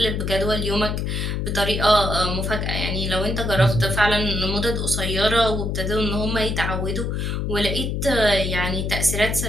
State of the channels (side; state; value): left; noise; hum, 1 dB below the sound